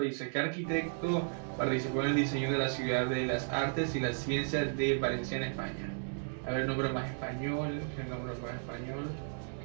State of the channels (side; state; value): left; silent; digital silence